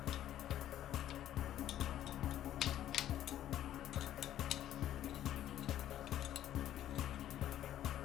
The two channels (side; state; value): right; quieter; 12.0 dB